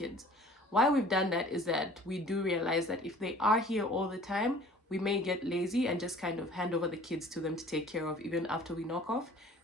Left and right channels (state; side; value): normal; both; correlation 0.49